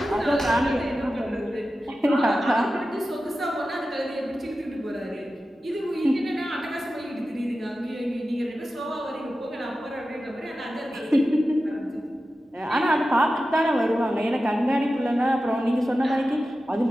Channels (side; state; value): both; normal; correlation 0.93